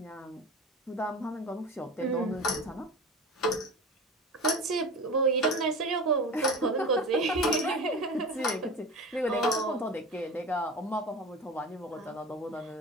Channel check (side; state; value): both; normal; correlation 0.33